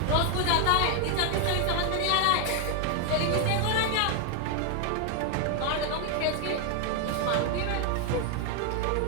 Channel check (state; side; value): different; both; correlation 0.01